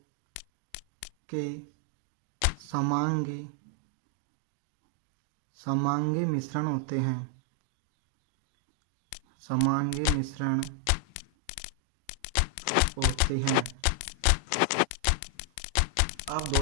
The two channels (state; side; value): different; both; correlation 0.00